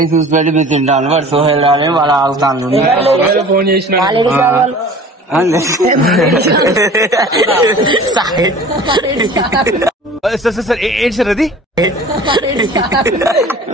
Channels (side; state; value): both; normal; correlation 0.43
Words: చూసి పెట్టి మీరు తింటాను. వాడు సోహెల్ అని వాళ్ళు ఆగుతాను. ఫోన్ చేసిన ఏంటి సార్ అది